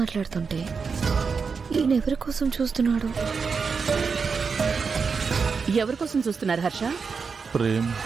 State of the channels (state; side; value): quieter; left; 5.3 dB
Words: ఈయన ఎవరి కోసం చూస్తున్నాడు? ఎవరి కోసం చూస్తున్నారు హర్ష? ప్రేమ్,